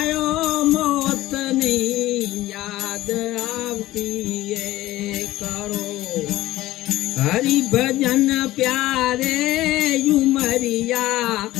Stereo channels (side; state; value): right; quieter; 16.3 dB